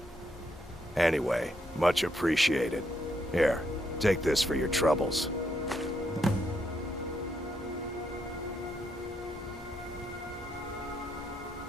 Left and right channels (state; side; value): normal; both; correlation 0.77